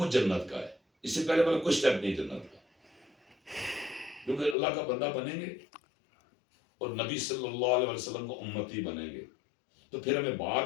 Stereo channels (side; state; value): right; drops out; at 4.5 s